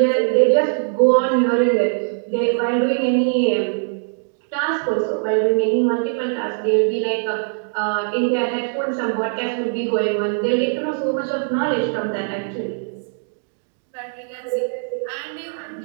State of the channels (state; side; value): silent; left; 59 dB below the other